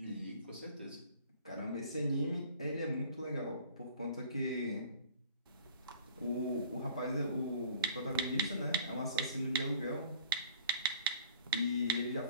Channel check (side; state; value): both; inverted; correlation -0.50